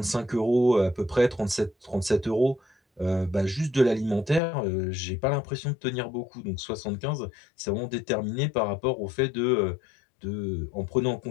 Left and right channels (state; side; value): drops out; right; at 4.4 s